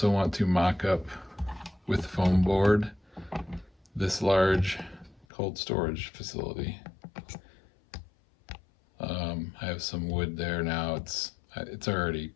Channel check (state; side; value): drops out; right; at 5.2 s